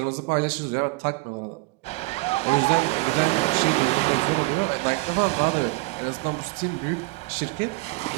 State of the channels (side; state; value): left; quieter; 24.0 dB